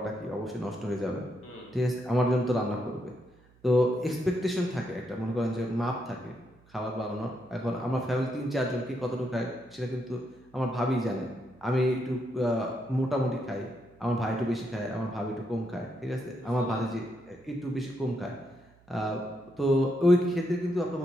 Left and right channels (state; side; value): noise; right; hum, 29 dB below the sound